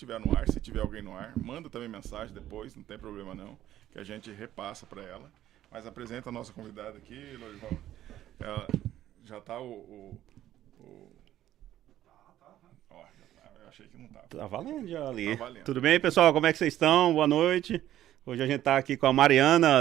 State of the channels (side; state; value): left; quieter; 12.8 dB